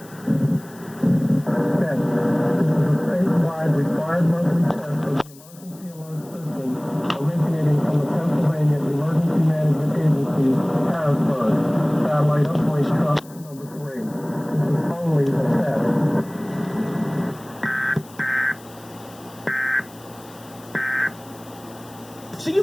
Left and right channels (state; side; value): noise; left; hiss, 23 dB below the sound